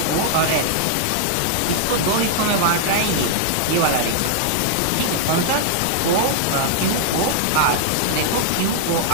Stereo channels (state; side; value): different; both; correlation 0.00